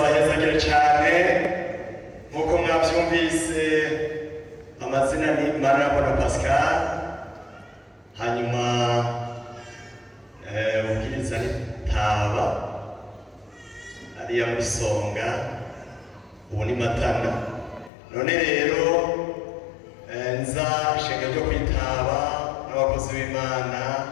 cyane nk'uko mwabyumvise. Amazina ni Manirambona Pascal, hanyuma ubwiriza ni Taba ariya muri Songa, ubu ni Matana. None rero nza ishenga ryo kwitaba n'abakozi b'Imana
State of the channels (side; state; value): right; drops out; at 17.9 s